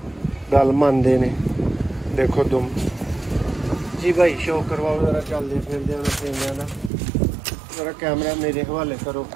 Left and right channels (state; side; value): drops out; left; at 6.9 s